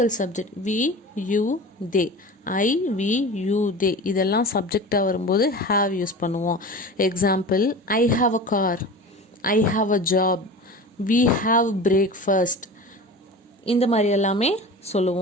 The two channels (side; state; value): both; normal; correlation 0.34